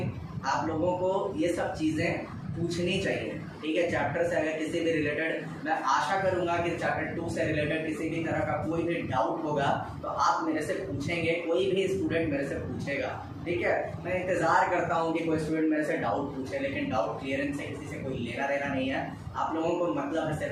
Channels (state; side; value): identical; both; correlation 1.00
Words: आप लोगों को ये सब चीज़ें पूछनी चाहिए, ठीक है। चैप्टर से अगर किसी भी रिलेटेड, मैं आशा करूंगा कि चैप्टर 2 से रिलेटेड किसी भी तरह का कोई भी डाउट होगा तो आप मेरे से पूछेंगे, कोई भी स्टूडेंट मेरे से पूछेगा, ठीक है। मैं इंतज़ार करता हूं कि कोई स्टूडेंट मेरे से डाउट पूछे, लेकिन डाउट क्लियरेंस से किसी से कोई लेना देना नहीं है। आप लोगों को मतलब है